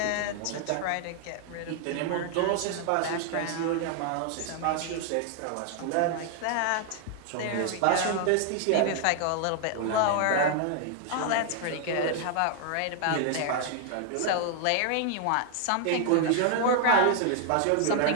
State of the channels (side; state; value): both; different; correlation 0.00